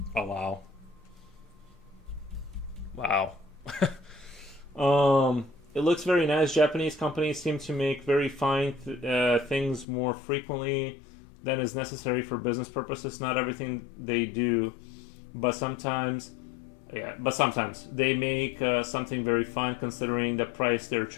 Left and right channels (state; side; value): drops out; right; at 9.9 s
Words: Oh wow. Wow. It looks very nice. Japanese companies seem to make very fine things more frequently than is necessary for business purposes. Not everything they do, but sometimes they make something very fine considering the price they're